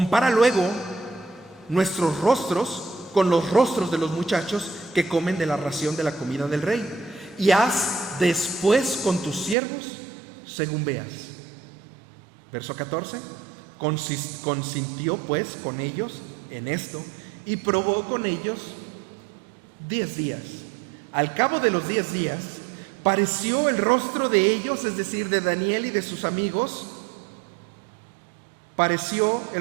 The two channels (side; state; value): left; drops out; at 9.6 s